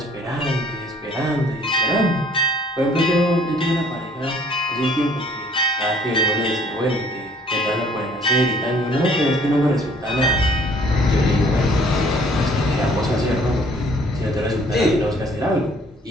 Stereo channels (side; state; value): both; normal; correlation 0.58